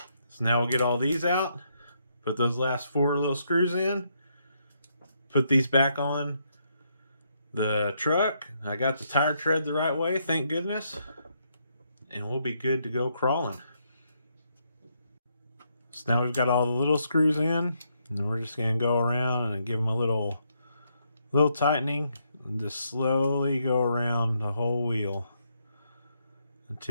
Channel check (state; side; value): inverted; both; correlation -0.76